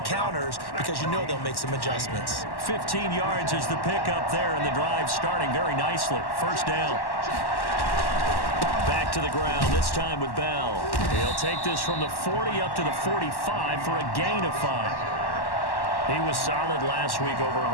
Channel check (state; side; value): late; right; 1.1 ms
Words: counters because you know they'll make some adjustments. 15 yards is the pickup there, and the drive starting very nicely. First down. Back to the ground, this time with Bell. He'll take this from the 40 up to the 45 for a gain of 5. He was solid last week, over